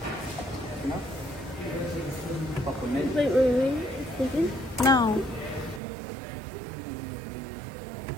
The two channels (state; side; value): drops out; left; at 5.8 s